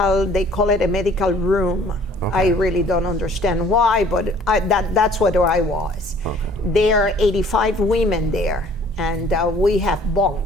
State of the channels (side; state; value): both; normal; correlation 0.55